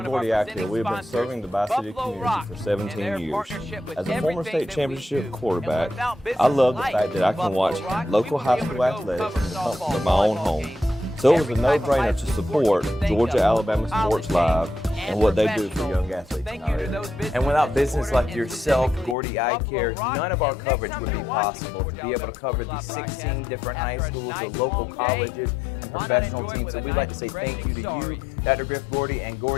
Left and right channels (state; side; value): drops out; right; at 19.2 s